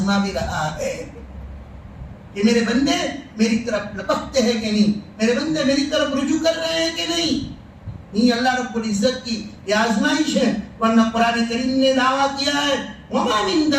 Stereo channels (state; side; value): identical; both; correlation 1.00